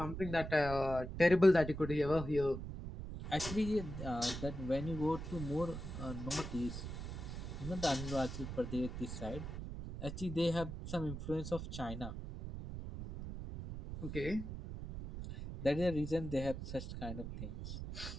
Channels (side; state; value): right; noise; rumble, 7 dB below the sound